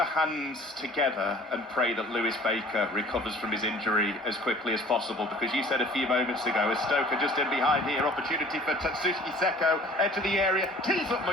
hands together and pray that Lewis Baker recovers from his injury as quickly as possible, because you said a few moments ago, as Stoke are just in behind here, opportunity for Tatsuki Seko, enter the area, tees up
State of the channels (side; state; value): both; normal; correlation 0.49